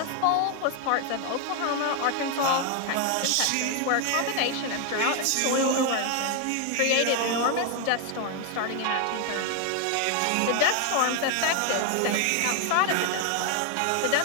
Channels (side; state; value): both; different; correlation 0.01